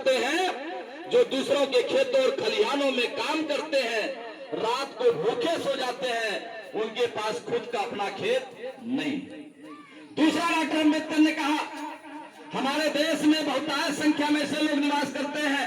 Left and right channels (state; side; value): identical; both; correlation 1.00